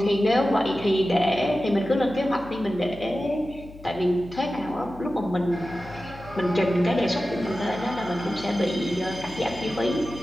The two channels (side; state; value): left; noise; hum, 18 dB below the sound